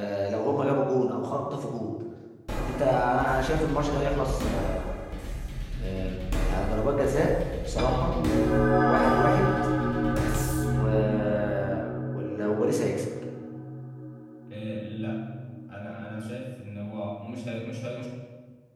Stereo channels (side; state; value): both; identical; correlation 1.00